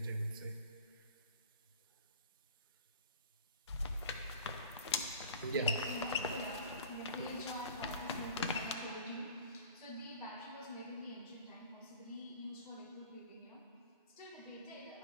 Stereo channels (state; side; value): inverted; both; correlation -0.42